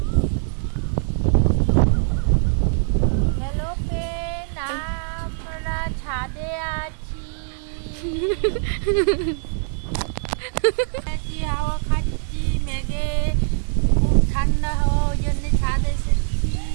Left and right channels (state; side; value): silent; left; digital silence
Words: আমরা ছাদে আছি, হাওয়া খাচ্ছি। মেঘে খুব ঠান্ডা হাওয়া, ওই জন্য ছাদে এসেছি।